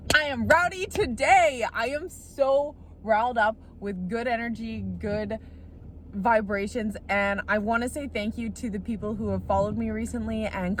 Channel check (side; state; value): both; identical; correlation 1.00